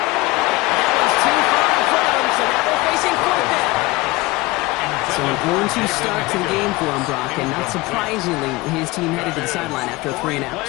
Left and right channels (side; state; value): right; quieter; 21.2 dB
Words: was too far in front of him, so now they're facing 4th down. So an 0-2 start to the game for him, Brock, and not surprisingly, his team headed to the sideline after a 3-and-out.